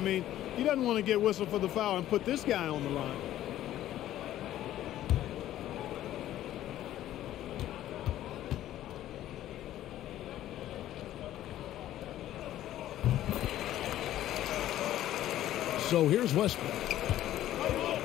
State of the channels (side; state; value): right; quieter; 13.1 dB